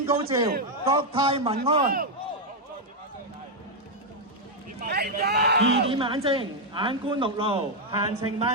高照，國泰民安。2點眼睛，眼觀六路，閒情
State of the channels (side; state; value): both; normal; correlation 0.00